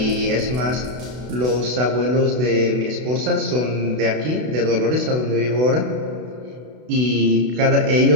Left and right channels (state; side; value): late; left; 32 ms